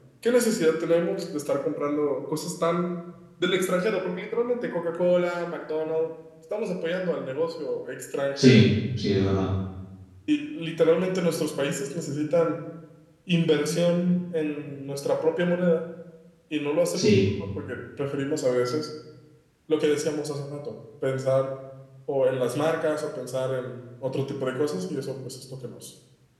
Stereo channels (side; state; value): both; identical; correlation 1.00